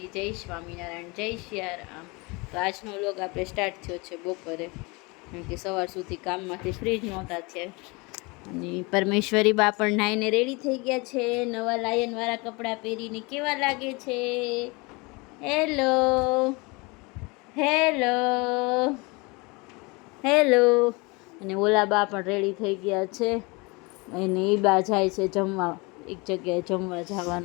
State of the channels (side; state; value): right; quieter; 27.0 dB